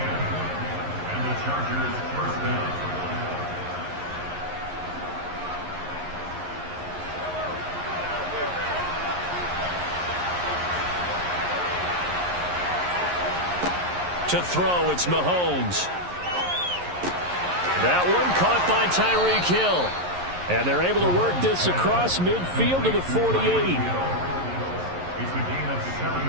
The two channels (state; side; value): late; left; 11 ms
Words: the Chargers first down. To throw, it's Mahomes. That one caught by Tyreek Hill. And they're able to work this across midfield to the 48. It's a gain of